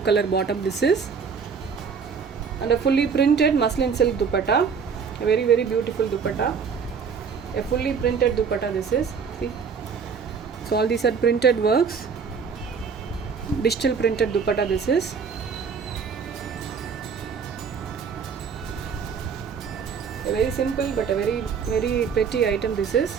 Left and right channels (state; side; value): quieter; left; 6.1 dB